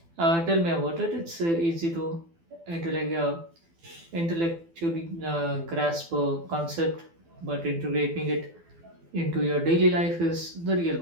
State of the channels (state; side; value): late; left; 12 ms